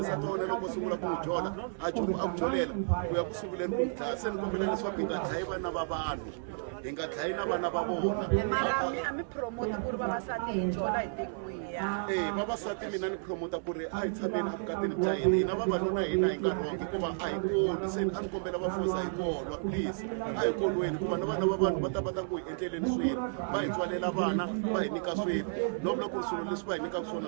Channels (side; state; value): left; silent; 56 dB below the other